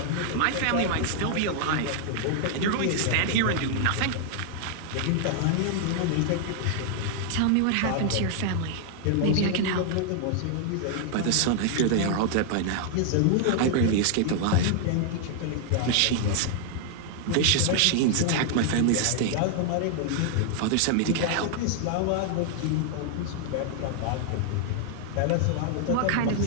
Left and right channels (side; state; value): both; different; correlation 0.00